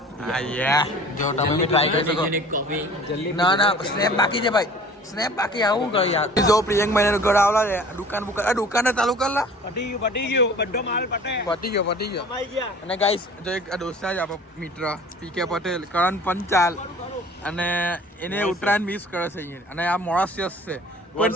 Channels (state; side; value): normal; both; correlation 0.46